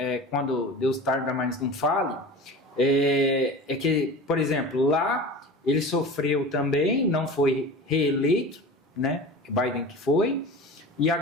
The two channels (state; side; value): normal; both; correlation 0.34